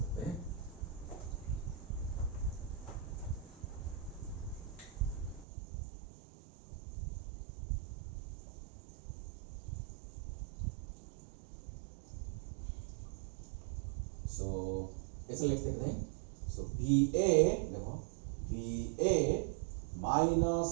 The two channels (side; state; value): left; drops out; at 5.5 s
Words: हैं. सो कैसे लिख सकते हैं? So VA, देखो VA minus